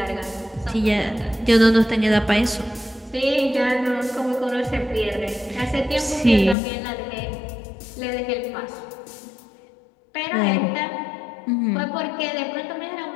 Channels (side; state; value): right; drops out; at 6.6 s